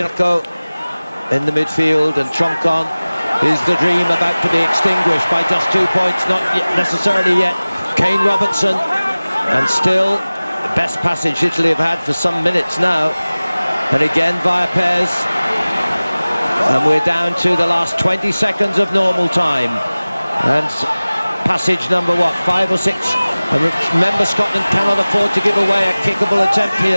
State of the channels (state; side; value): inverted; both; correlation -0.99